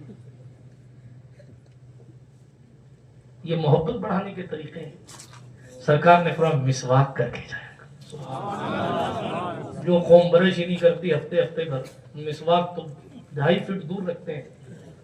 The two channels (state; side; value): identical; both; correlation 1.00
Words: یہ محبت بڑھانے کے طریقے ہیں۔ سرکار نے فرمایا مسواک کر کے جائے گا۔ جو قوم برش ہی نہیں کرتی ہفتے ہفتے بھر، مسواک تو 2.5 فٹ دور رکھتے ہیں۔